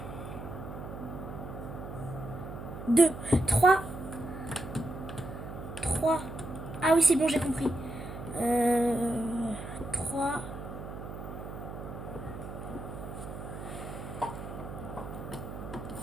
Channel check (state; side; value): noise; right; hum, 9 dB below the sound